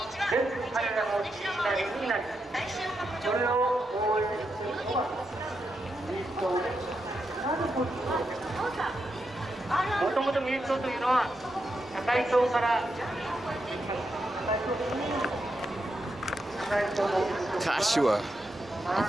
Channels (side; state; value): both; normal; correlation 0.85